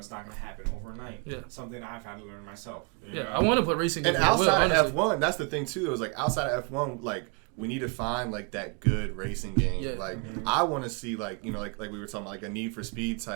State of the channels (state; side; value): quieter; left; 35.1 dB